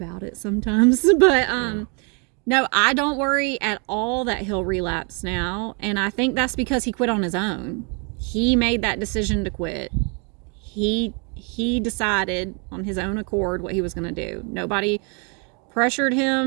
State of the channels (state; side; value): quieter; left; 35.6 dB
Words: it sometimes. But no, I don't worry at all that he'll relapse now. And I think that's because he quit on his own. He made that decision to quit. He decided on his own accord what he was going to do. Nobody pressured